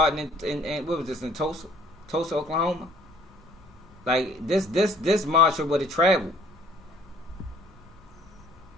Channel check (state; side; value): normal; both; correlation 0.57